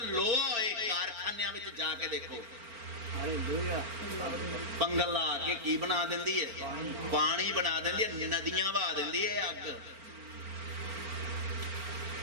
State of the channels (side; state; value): left; late; 4.4 ms